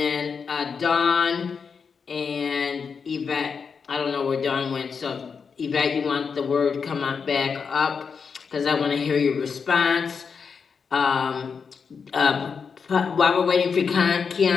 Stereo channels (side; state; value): right; quieter; 5.8 dB